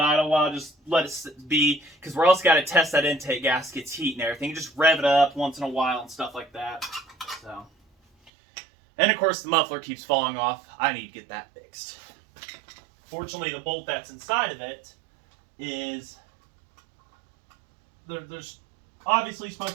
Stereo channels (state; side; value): drops out; left; at 8.3 s